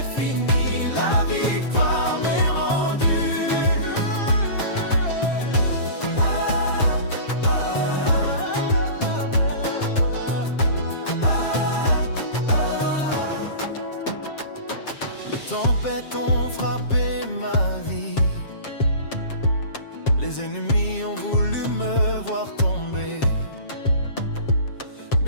fini, la victoire m'est rendue. Les tempêtes ont frappé ma vie, les ennemis ont voulu me voir tomber,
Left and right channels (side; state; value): right; late; 7.5 ms